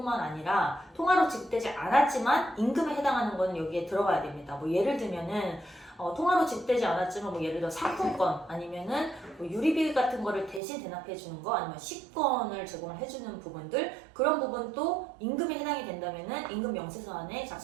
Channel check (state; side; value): drops out; left; at 10.6 s